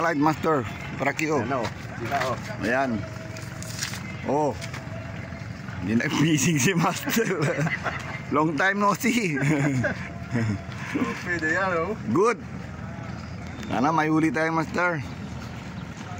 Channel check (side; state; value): both; identical; correlation 1.00